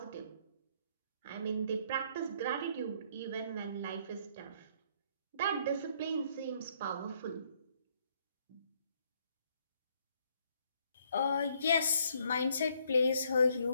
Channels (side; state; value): both; inverted; correlation -0.68